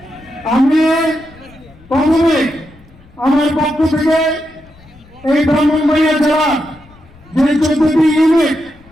আমি প্রথমে আমার পক্ষ থেকে এই ব্রাহ্মণবাড়িয়া জেলা যে 14টি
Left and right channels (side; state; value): left; noise; rumble, 26 dB below the sound